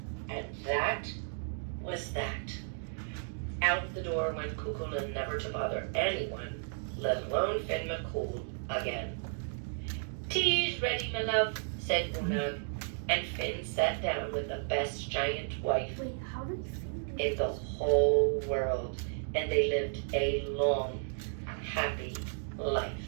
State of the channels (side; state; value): left; silent; digital silence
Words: And that was that. Out the door went Cuckoo Lin, never to bother anyone, let alone Finn McCool again. Tea's ready, my love, said Unag, and Finn sat down with the best giant wife Wait, how did Finn in the whole world, and they lived a long, happy life.